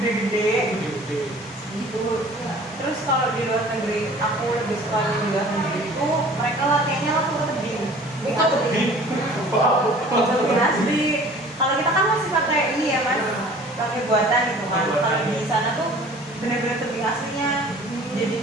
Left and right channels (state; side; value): normal; both; correlation 0.48